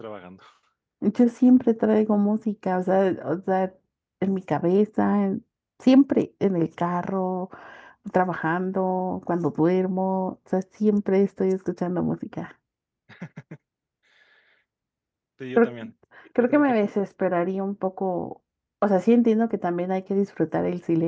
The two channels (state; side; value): identical; both; correlation 1.00